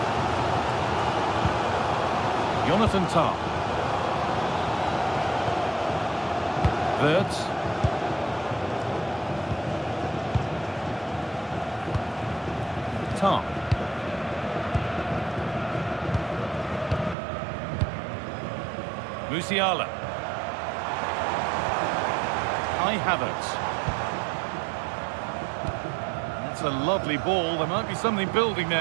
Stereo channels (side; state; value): left; drops out; at 17.2 s